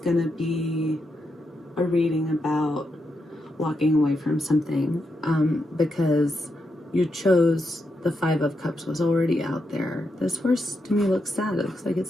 gonna be a reading about walking away from something, because you chose the 5 of Cups was already out there. This horse to me looks sad. It looks like it's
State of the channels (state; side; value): normal; both; correlation 0.84